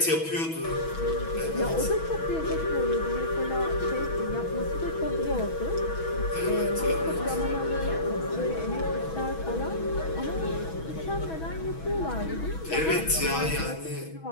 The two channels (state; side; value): late; right; 6.2 ms